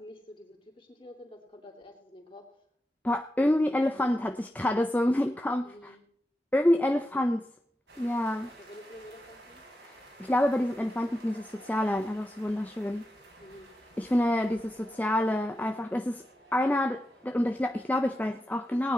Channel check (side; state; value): both; normal; correlation 0.89